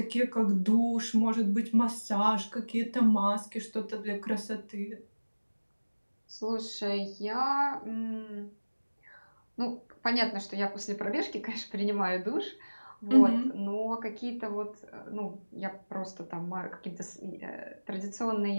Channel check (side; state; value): both; inverted; correlation -1.00